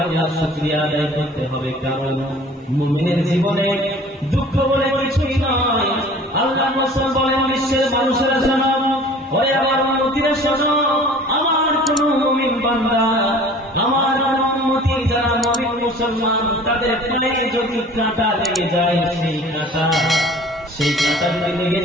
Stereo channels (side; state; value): both; normal; correlation 0.46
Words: আল্লাহর শুকরিয়া আদায় করতে হবে, কারণ মুমিনের জীবনে দুঃখ বলে কিছুই নয়। আল্লাহ রাসূল বলেন বিশ্বের মানুষেরা শোনো, ওরে আমার উম্মতিরা শোনো, আমার কোন মুমিন বান্দা, আমার কোন উম্মতি যারা মুমিন মুসলমান, তাদের পায়ে যদি কাঁটা লেগে যায়, সেই কাঁটা যদি লেগে